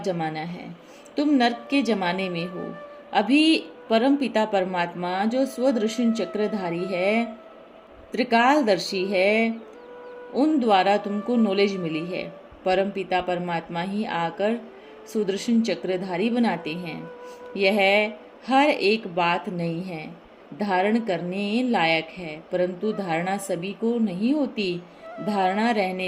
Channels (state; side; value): identical; both; correlation 1.00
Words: है, तुम नर्क के जमाने में हो। अभी परम पिता परमात्मा जो स्वदर्शन चक्रधारी है, त्रिकालदर्शी है, उन द्वारा तुमको नॉलेज मिली है। परम पिता परमात्मा ही आकर सुदर्शन चक्रधारी बनाते हैं। यह हर एक बात नहीं है, धारण करने लायक है, परंतु धारणा सभी को नहीं होती। धारणा